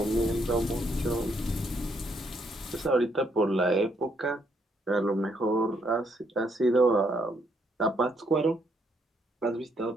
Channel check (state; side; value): normal; both; correlation 0.72